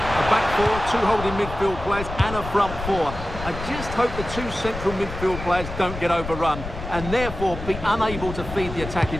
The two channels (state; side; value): noise; left; rumble, 9 dB below the sound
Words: back four, two holding midfield players, and a front four. I just hope the two central midfield players don't get overrun, and therefore be unable to feed the